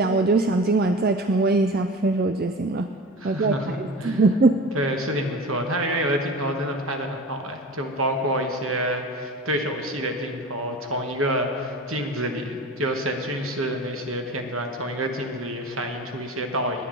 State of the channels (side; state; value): both; normal; correlation 0.35